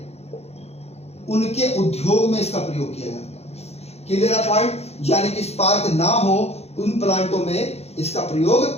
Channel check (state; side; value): late; right; 0.31 ms